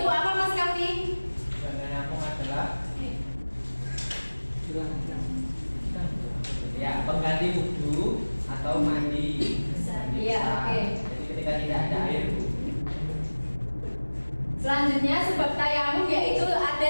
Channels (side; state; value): both; inverted; correlation -1.00